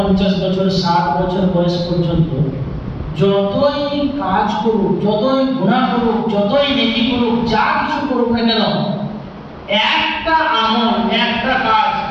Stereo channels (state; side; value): identical; both; correlation 1.00